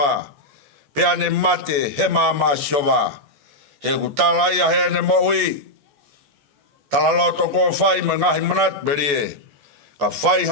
Pea ne mate he mama asi hoa. He kutala ia he ne moui. Tala loto ko whai me ngahi manat berie. Ka whai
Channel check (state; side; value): late; left; 14 ms